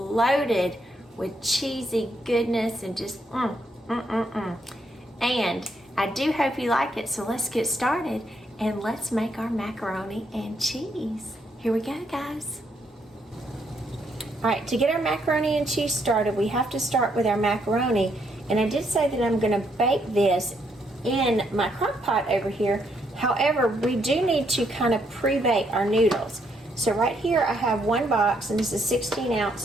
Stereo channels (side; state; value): both; normal; correlation 0.74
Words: with cheesy goodness and just And I do hope you like it, so let's get started and let's make our macaroni and cheese. Here we go, guys. All right, to get our macaroni and cheese started, we have to start with our macaroni. And I did say that I'm gonna bake this in my crock pot over here. However, we do need to kind of pre-bake our noodles. So right here I have one box, and this is 16